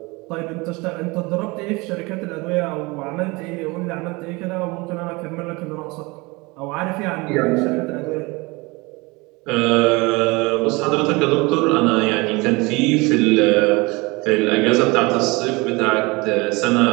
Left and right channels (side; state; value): left; quieter; 24.9 dB